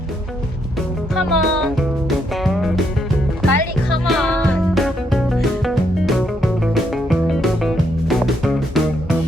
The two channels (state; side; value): normal; both; correlation 0.76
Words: Come on. 빨리 come on.